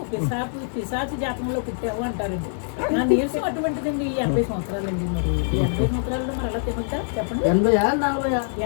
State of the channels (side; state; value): right; silent; 57 dB below the other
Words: పిశాచి జాతకంలో పుట్టావు అంటారండి. నా నీరసం అటువంటిదండి. 80 సంవత్సరాలండి. మరి 80 సంవత్సరాల్లో మరి అలా తినొద్దా చెప్పండి? 80 40